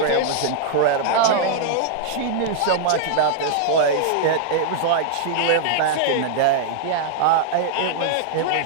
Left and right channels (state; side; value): different; both; correlation -0.01